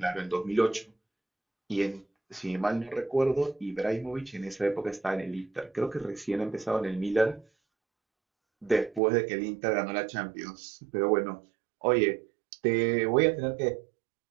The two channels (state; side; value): drops out; left; at 9.0 s